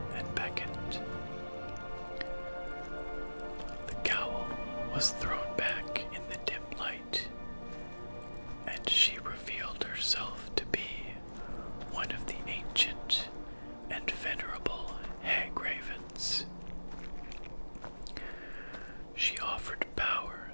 and beckoned. The cowl was thrown back in the dim light, and she revealed herself to be one of the ancient and venerable hag ravens. She offered power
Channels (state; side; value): inverted; both; correlation -1.00